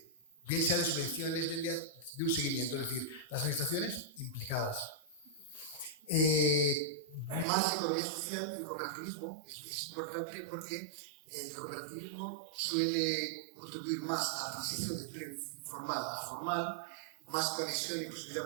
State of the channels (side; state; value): left; drops out; at 7.5 s